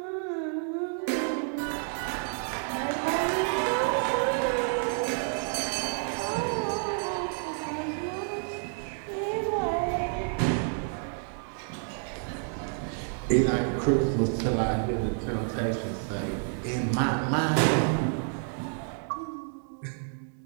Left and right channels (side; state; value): left; silent; 57 dB below the other